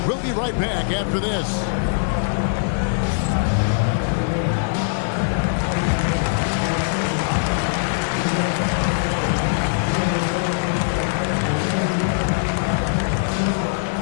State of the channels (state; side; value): silent; right; digital silence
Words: we'll be right back after this.